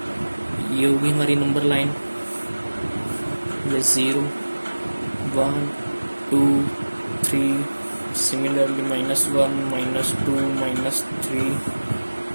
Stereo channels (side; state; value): both; inverted; correlation -1.00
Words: ये होगी हमारी नंबर लाइन, ये 0 1 2 3, सिमिलरली -1 -2 -3।